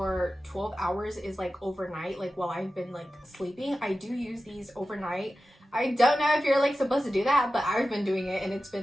12 hours is like overnight, like while I've been like sleeping. I do use these overnight. I don't know if you're like supposed to do that, but I've been doing it and it's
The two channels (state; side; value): normal; both; correlation 0.94